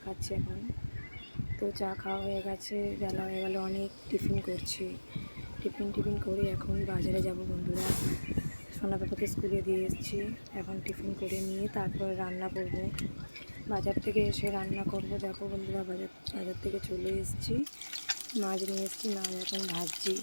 খাচ্ছি এখন। তো চা খাওয়া হয়ে গেছে, বেলা হয়ে গেল অনেক। টিফিন করছি, টিফিন করে এখন বাজারে যাব বন্ধুরা। সোনা পাপাকে স্কুলে দিয়ে এসেছি, এখন টিফিন করে নিয়ে তারপর রান্না করব। বাজার থেকে এসে রান্না করব। দেখো বন্ধুরা, বাজার থেকে চলে এসেছি, মাছ নিয়ে এসেছি, মাছ এখন ভাজছি।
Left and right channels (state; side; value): inverted; both; correlation -1.00